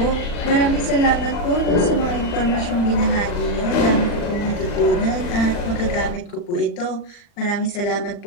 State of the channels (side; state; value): right; late; 40 ms